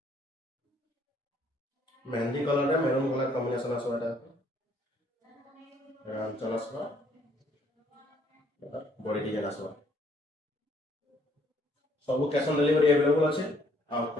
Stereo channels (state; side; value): normal; both; correlation 0.65